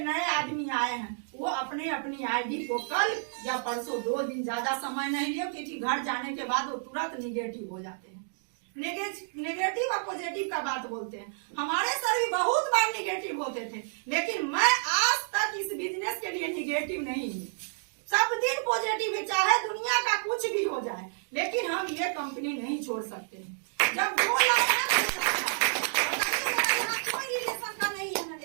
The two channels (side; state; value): left; silent; digital silence